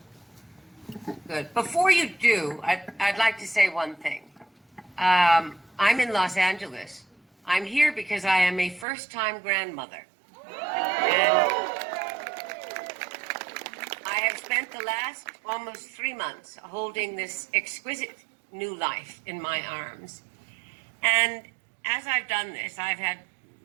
Good. Before you do, I'd like to say one thing. I'm in Los Angeles. I'm here because I am a first-time grandmother. And I have spent the last almost 3 months holding this exquisite new life in my arms. And as I've done this, I've had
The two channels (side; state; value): left; drops out; at 8.8 s